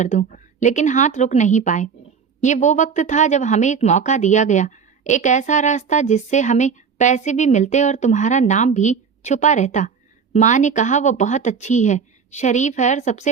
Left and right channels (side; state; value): left; quieter; 6.3 dB